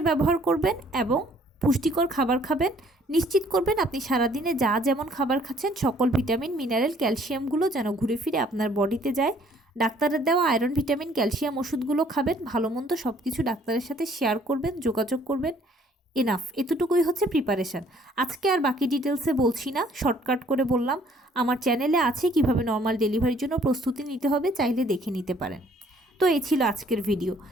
ব্যবহার করবেন এবং পুষ্টিকর খাবার খাবেন। নিশ্চিত করবেন আপনি সারাদিনে যা যেমন খাবার খাচ্ছেন সকল ভিটামিন, মিনারেল, ক্যালসিয়ামগুলো যেন ঘুরে ফিরে আপনার বডিতে যায়। ডাক্তারের দেওয়া আয়রন, ভিটামিন, ক্যালসিয়াম ওষুধগুলো খাবেন। ভালো মন্দ সব কিছু ডাক্তারের সাথে শেয়ার করবেন, যোগাযোগ করবেন। এনাফ, এতটুকুই হচ্ছে প্রিপারেশান। আজকে আর বাকি ডিটেলসে বলছি না, শর্টকাট করে বললাম। আমার চ্যানেলে আছে কিভাবে নর্মাল ডেলিভারির জন্য প্রস্তুতি নিতে হবে, চাইলে দেখে নিতে পারেন। তো এই ছিল আজকের ভিডিও।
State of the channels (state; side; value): normal; both; correlation 0.60